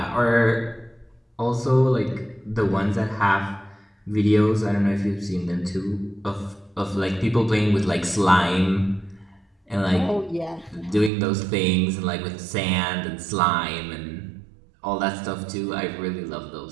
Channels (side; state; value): left; drops out; at 11.1 s